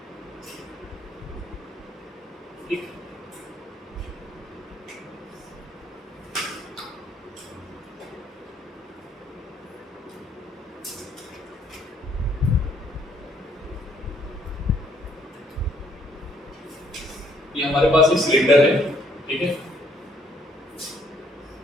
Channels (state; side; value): normal; both; correlation 0.66